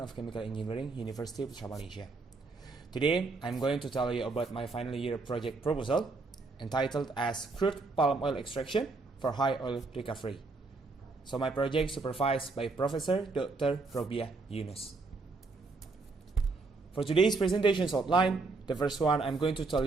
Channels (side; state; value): left; quieter; 3.8 dB